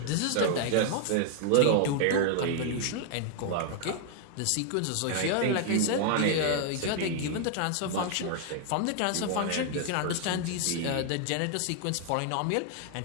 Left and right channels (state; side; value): different; both; correlation 0.00